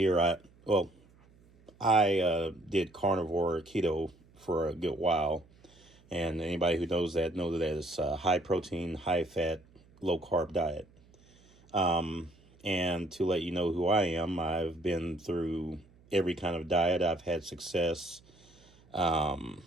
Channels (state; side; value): noise; right; hum, 28 dB below the sound